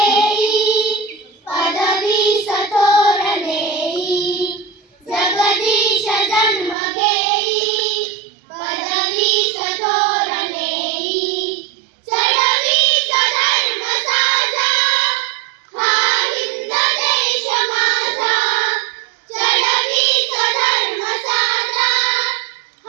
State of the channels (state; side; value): drops out; left; at 6.8 s